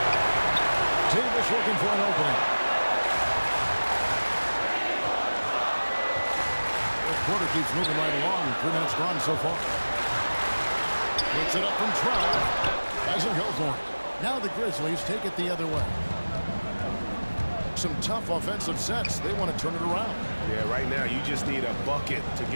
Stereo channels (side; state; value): both; inverted; correlation -1.00